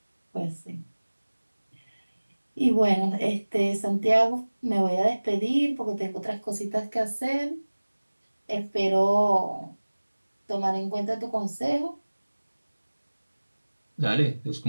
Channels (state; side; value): inverted; both; correlation -1.00